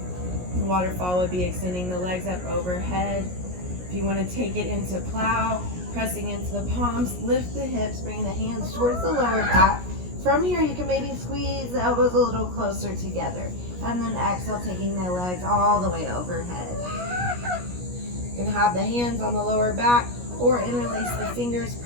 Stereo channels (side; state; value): left; late; 17 ms